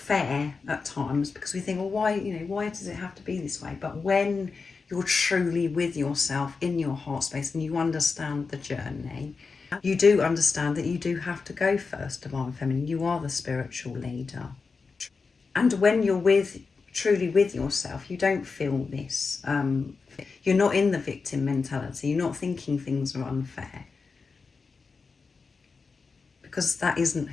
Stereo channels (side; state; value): right; quieter; 4.7 dB